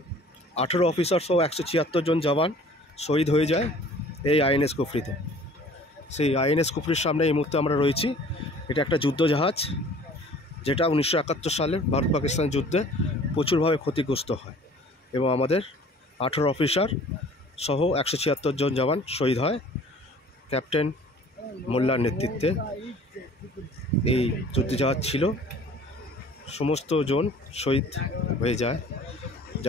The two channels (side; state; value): both; normal; correlation 0.50